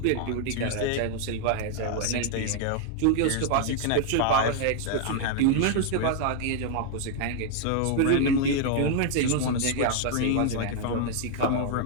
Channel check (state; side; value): different; both; correlation 0.00